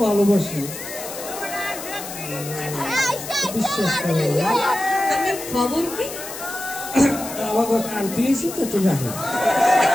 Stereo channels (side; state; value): left; noise; hiss, 10 dB below the sound